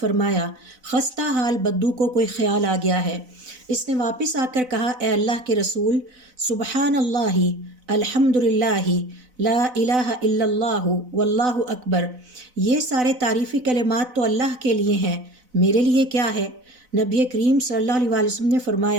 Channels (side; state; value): left; late; 4.0 ms